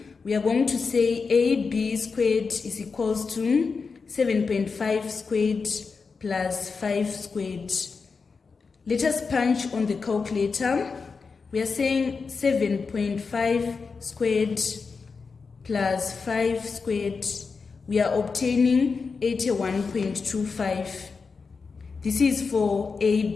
we are going to say AB squared is equals to 7.5 squared plus 5 squared. Let us punch on the calculator. We are saying 7.5 squared plus 5 squared. We are obtaining 81.25. This is for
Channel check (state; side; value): quieter; right; 4.9 dB